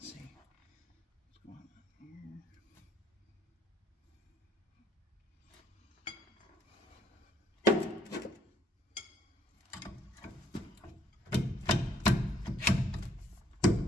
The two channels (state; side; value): normal; both; correlation 0.66